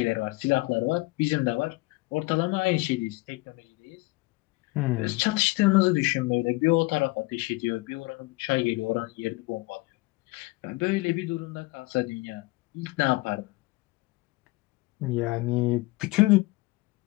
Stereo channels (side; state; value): right; quieter; 22.8 dB